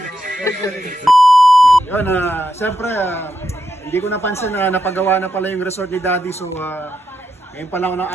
Yun, siyempre, hindi ko napansin na napagawa na pala yung resort ni Daddy. So, ngayon pa lang,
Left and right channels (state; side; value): normal; both; correlation 0.84